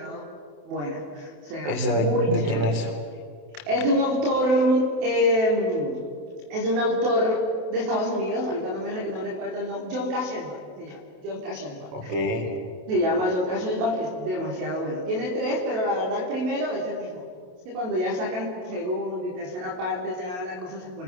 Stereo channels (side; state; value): left; late; 27 ms